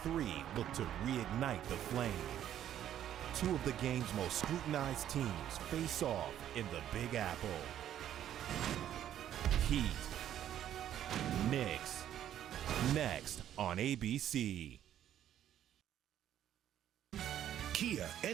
Three look to reignite the flame. Two of the game's most scrutinized teams face off in the Big Apple. Heat. Knicks. Next on ABC. Kia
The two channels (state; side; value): quieter; left; 11.0 dB